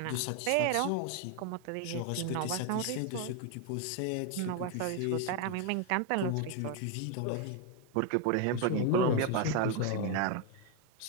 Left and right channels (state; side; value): different; both; correlation 0.01